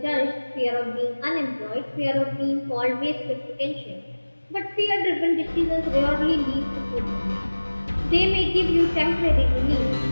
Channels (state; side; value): inverted; both; correlation -1.00